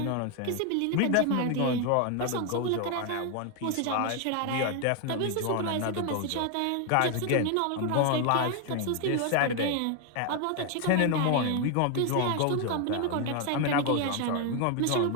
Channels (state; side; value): different; both; correlation 0.01